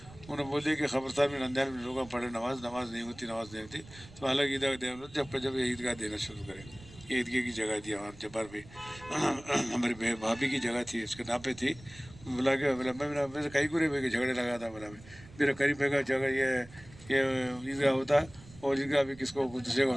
उन्होंने बोले कि खबरदार में रमजान में लोग पढ़े, नमाज नहीं होती, तो अलग ईदगाह दे, जब ये ईदगाह देना शुरू करें। ये ईदगाह की जगह थी वहाँ जब्बार पे, हमारी भाभी की जगह थी, उसके नाम पे थी। बोला मैं कहीं को नहीं झगड़े लगा था, बोला मेरा करीब का जगह ये ईदगाह होता और ईदगाह अभी किसको दूसरे का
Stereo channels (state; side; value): noise; right; rumble, 20 dB below the sound